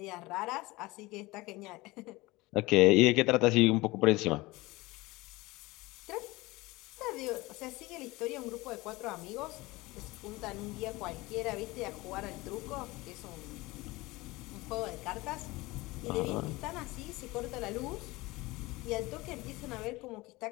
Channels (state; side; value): quieter; right; 21.3 dB